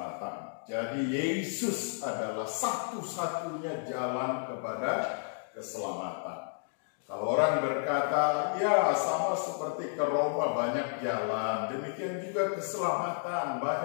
Jadi Yesus adalah satu-satunya jalan kepada keselamatan. Kalau orang berkata, ya sama seperti ke Roma banyak jalan, demikian juga keselamatan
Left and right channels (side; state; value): right; silent; digital silence